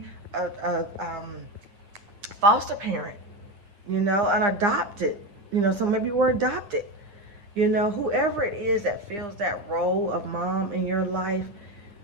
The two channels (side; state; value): left; late; 9.8 ms